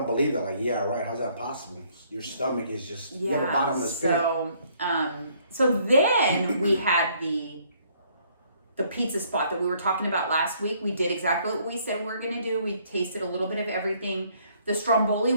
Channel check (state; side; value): inverted; both; correlation -0.64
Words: believe that. Like, yeah, right. How's that possible? Your stomach is just you have a bottomless pit. So then we had the pizza spot that we were talking about last week. We did exactly what we said we were going to do. We tasted a little bit of everything. The stromboli